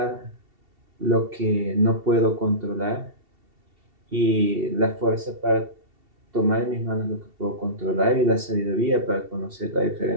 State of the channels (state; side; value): late; left; 2.7 ms